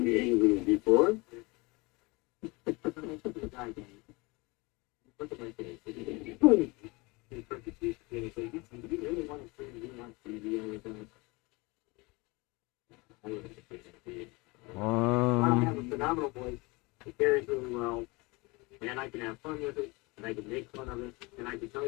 Engraving before. Look at my face. You really want to bring me on TV with us? I would I have a phenomenal voice. It carries really well, and I can have fun with it, and I can make fun of it, and I can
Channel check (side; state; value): right; quieter; 25.5 dB